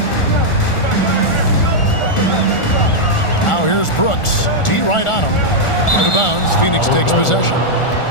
Now here's Brooks. D right on him. Out of bounds. Phoenix takes possession.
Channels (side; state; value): right; late; 1.4 ms